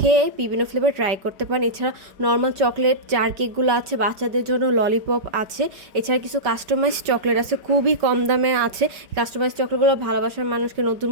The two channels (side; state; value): left; late; 5.0 ms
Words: বিভিন্ন ফ্লেভার ট্রাই করতে পারেন। এছাড়া নর্মাল চকলেট জার কেকগুলো আছে, বাচ্চাদের জন্য ললিপপ আছে। এছাড়া কিছু কাস্টমাইজ চকলেট আছে, খুবই কম দামে আছে। কাস্টমাইজ চকলেটগুলো ভালোবাসার মানুষকে নতুন